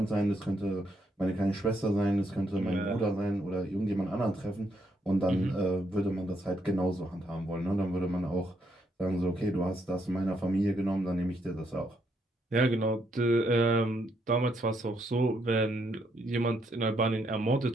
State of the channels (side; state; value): both; normal; correlation 0.76